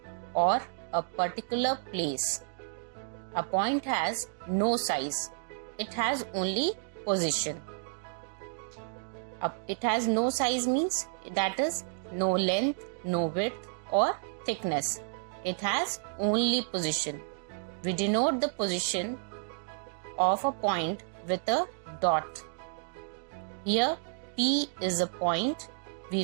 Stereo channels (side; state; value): left; silent; digital silence